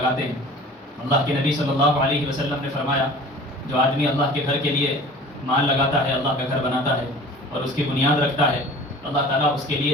ہیں. اللہ کے نبی صلی اللہ علیہ وسلم نے فرمایا جو آدمی اللہ کے گھر کے لیے مال لگاتا ہے، اللہ کا گھر بناتا ہے اور اس کی بنیاد رکھتا ہے، اللہ تعالیٰ اس کے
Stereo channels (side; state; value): both; normal; correlation 0.43